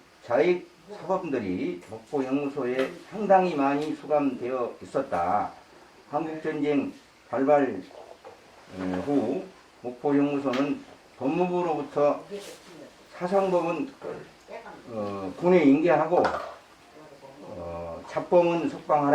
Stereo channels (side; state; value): both; identical; correlation 1.00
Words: 자익 사범들이 목포형무소에 상당히 많이 수감되어 있었다. 한국전쟁 발발 후 목포형무소는 법무부로부터 사상범은 군에 인계하고 잡범은